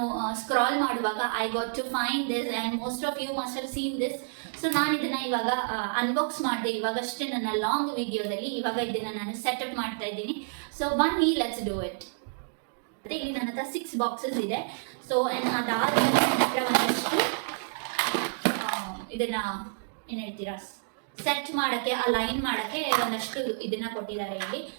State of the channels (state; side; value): silent; left; digital silence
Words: ಸ್ಕ್ರಾಲ್ ಮಾಡುವಾಗ I got to find this and most of you must have seen this. So ನಾನು ಇದನ್ನ ಇವಾಗ ಅನ್ಬಾಕ್ಸ್ ಮಾಡಿದೆ ಇವಾಗಷ್ಟೇ ನನ್ನ ಲಾಂಗ್ ವಿಡಿಯೋದಲ್ಲಿ. ಇವಾಗ ಇದನ್ನ ನಾನು ಸೆಟಪ್ ಮಾಡ್ತಾ ಇದ್ದೀನಿ. ಸೊ ಬನ್ನಿ ಲೆಟ್ಸ್ ಡೂ ಇಟ್. ಮತ್ತೆ ಇಲ್ಲಿ ನನ್ನ ಹತ್ರ 6 ಬಾಕ್ಸಸ್ ಇದೆ. ಸೊ ಅದಾದ್ಮೇಲೆ ನನ್ನ ಹತ್ರ ಒಂದಷ್ಟು ಇದನ್ನ ಏನ್ ಹೇಳ್ತೀರಾ ಸೆಟ್ ಮಾಡಕ್ಕೆ ಅಲೈನ್ ಮಾಡಕ್ಕೆ ಒಂದಷ್ಟು ಇದನ್ನ ಕೊಟ್ಟಿದ್ದಾರೆ ಇಲ್ಲಿ.